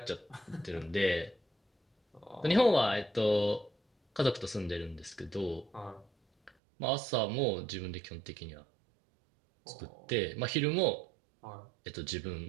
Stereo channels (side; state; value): left; drops out; at 6.5 s